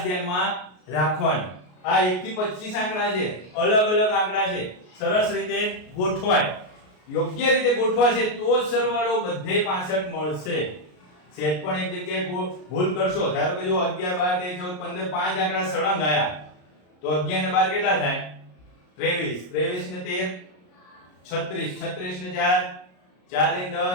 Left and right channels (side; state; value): right; late; 33 ms